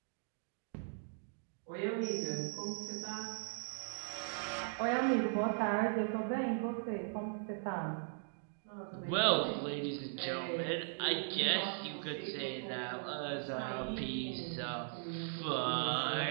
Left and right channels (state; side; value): silent; left; digital silence